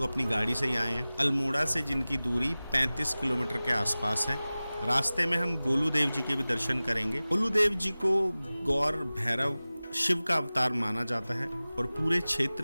अपनी गाड़ी से ही आए हैं। अल्मोड़ा से जिनकी दूरी 35 किलोमीटर के आसपास है। रास्ते में हम गोलू देव जी के भी दर्शन करेंगे। गोलू देव जी को गौर भैरव शिव का अवतार माना जाता है और पूरे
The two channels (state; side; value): inverted; both; correlation -0.98